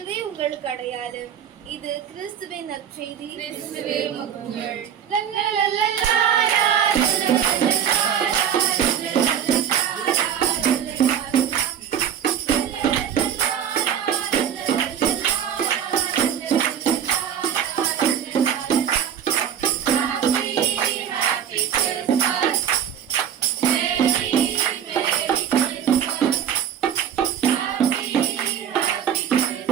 உங்களுக்கு அடையாளம். இது கிறிஸ்துவின் நற்செய்தி.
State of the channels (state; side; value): quieter; left; 9.0 dB